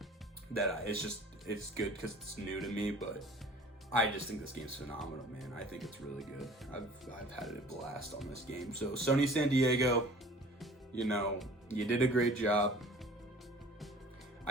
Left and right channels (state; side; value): normal; both; correlation 0.47